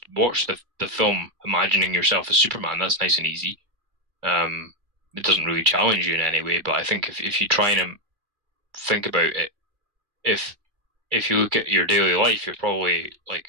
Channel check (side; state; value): left; late; 2.5 ms